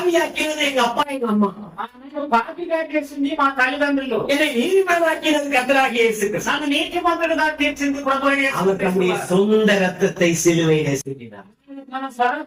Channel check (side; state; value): both; identical; correlation 1.00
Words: எங்க அப்பா எங்க அம்மா. నాకు పాపిగా చేసింది మా తల్లిదండ్రులు. என்னை நீதிமானாக்கினது கர்த்தராகிய இயேசு கிறிஸ்து. నన్ను నీతిమంతుడుగా తీర్చింది ప్రభువైన యేసు அவர் தம்முடைய క్రీస్తు. சொந்த ரத்தத்தை சிலுவையிலே சிந்தினார். మన